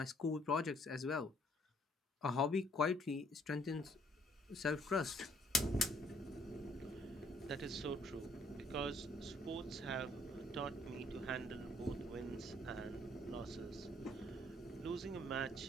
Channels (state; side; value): normal; both; correlation 0.64